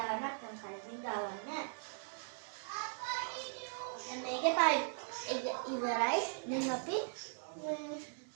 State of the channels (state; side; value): silent; left; digital silence